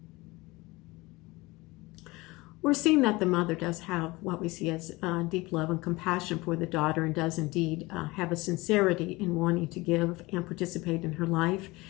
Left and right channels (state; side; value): quieter; right; 22.1 dB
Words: We're seeing that the mother does have what we see as deep love and compassion for the daughter, and does indeed have a sincerity in wanting to give and participate in her life